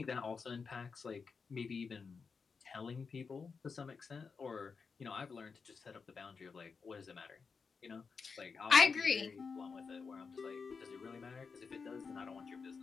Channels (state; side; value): quieter; right; 5.2 dB